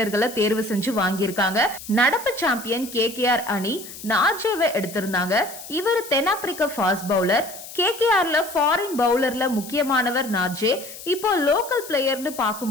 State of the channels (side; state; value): left; noise; hiss, 14 dB below the sound